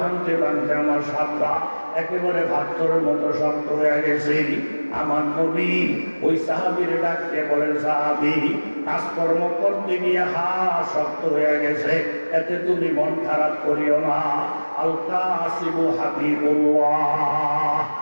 ভাঙতে আমার সাতটা একেবারে পাথরের মতো শক্ত হয়ে গেছে। আমার নবী ওই সাহাবীর ডাকতে বলেন, সাহাবী কাজকর্ম করতে গিয়ে শক্ত হয়ে গেছে, এতে তুমি মন খারাপ করিও না। আল কাসিবু হাবিবুল্লাহ।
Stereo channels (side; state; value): both; inverted; correlation -1.00